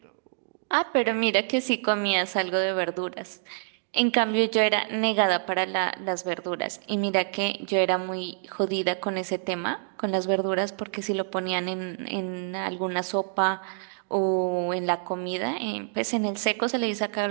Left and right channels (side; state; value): left; silent; digital silence